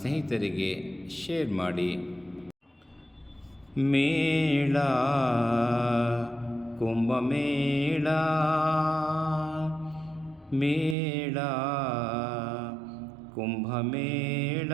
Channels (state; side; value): drops out; left; at 11.0 s